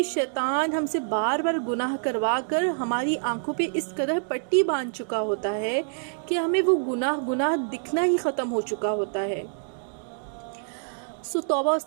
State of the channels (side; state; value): left; silent; digital silence